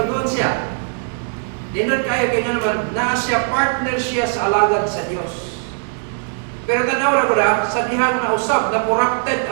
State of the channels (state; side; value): silent; left; digital silence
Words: siya. Dinod kayo kaya naman, naa siya, partner siya sa alagad sa Diyos. Pero tanaw na ko na, sa dihang nausap, na corrupted